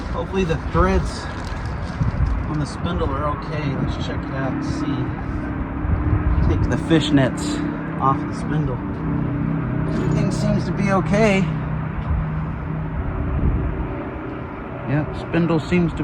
Hopefully the threads on the spindle are okay. Let's check it out and see. Take the fishnets off the spindle. Everything seems to be okay. Yep, spindle seems to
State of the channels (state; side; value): identical; both; correlation 1.00